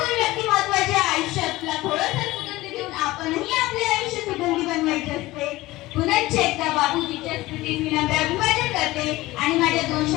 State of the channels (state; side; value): quieter; right; 18.6 dB